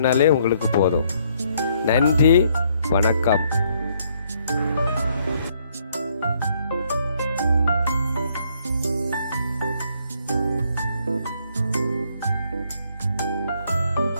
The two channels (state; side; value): inverted; both; correlation -0.68